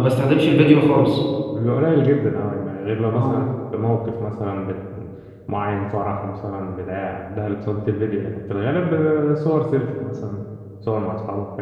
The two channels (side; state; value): both; identical; correlation 1.00